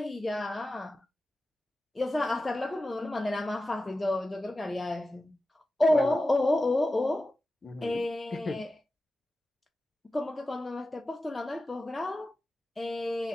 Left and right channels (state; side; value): normal; both; correlation 0.94